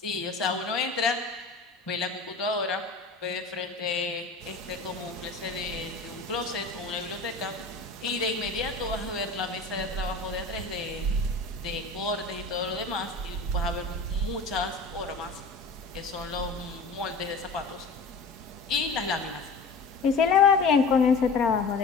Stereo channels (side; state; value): right; quieter; 3.8 dB